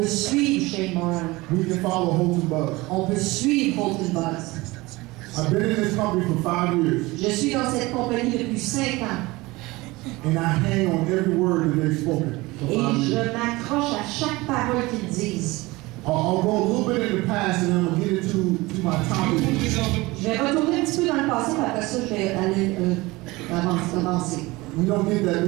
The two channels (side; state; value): left; quieter; 21.5 dB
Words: suivre Shane Moran. We can follow Holton Buzz. On peut suivre Holton Buzz. I've been in this company for 5 years, Je suis dans cette compagnie depuis 5 ans and I hang on every word that they've spoken for 5 et je years. m'accroche à chaque parole qu'ils disent. I'll go a little bit in the past, and then I'm gonna get into my topic. Je vais retourner un petit peu dans le passé, mais après ça, je vais aller avancer. You don't get that